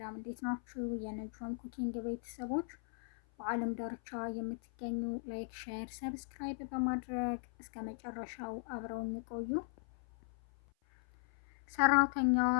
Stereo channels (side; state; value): right; silent; 52 dB below the other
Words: እንዴት ናችሁ? የነጅም ኩኪንግ ቤተሰቦች በዓለም ዳርቻ የምትገኙ ላይክ፣ ሼር፣ ሰብስክራይብ በማድረግ እስከ መጨረሻው አብረውን ይቆዩ። ሰራተኛዋ